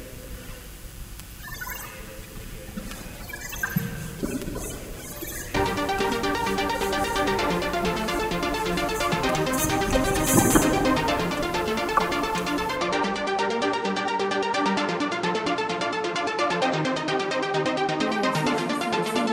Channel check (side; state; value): both; identical; correlation 1.00